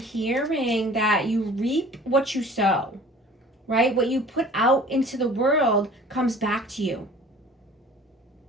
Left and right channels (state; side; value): normal; both; correlation 0.47